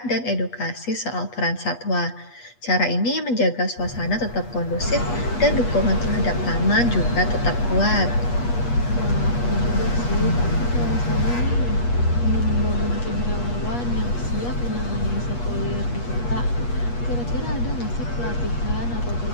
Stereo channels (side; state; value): right; late; 8.3 ms